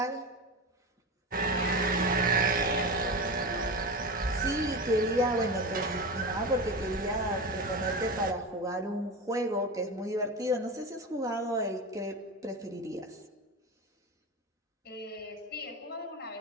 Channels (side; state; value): both; normal; correlation 0.24